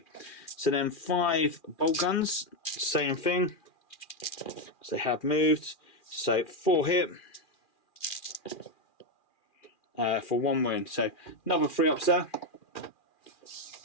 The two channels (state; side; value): late; right; 2.4 ms